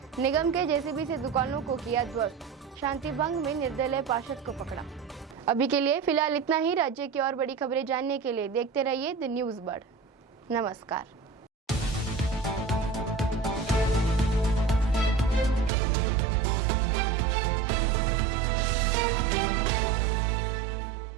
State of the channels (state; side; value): drops out; left; at 15.7 s